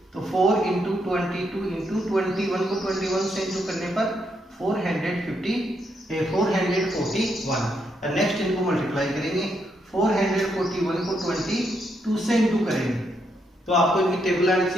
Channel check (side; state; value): both; normal; correlation 0.78